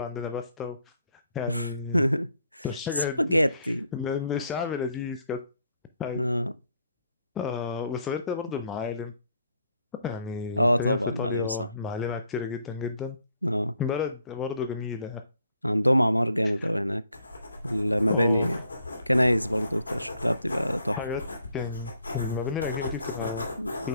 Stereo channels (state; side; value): inverted; both; correlation -0.69